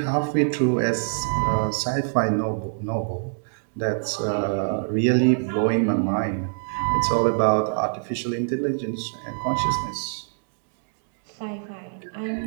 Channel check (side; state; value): left; silent; digital silence